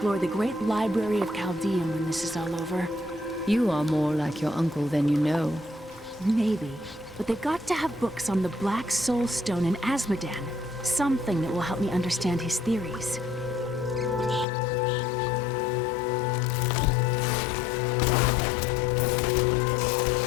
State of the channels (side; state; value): right; drops out; at 14.5 s